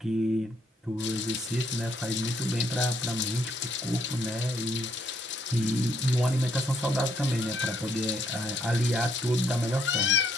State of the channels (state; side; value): normal; both; correlation 0.71